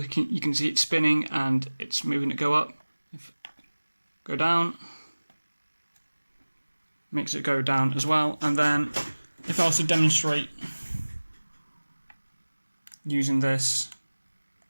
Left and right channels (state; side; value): inverted; both; correlation -1.00